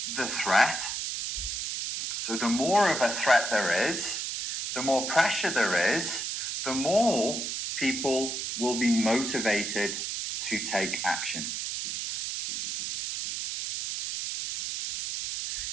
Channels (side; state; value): right; noise; hiss, 3 dB below the sound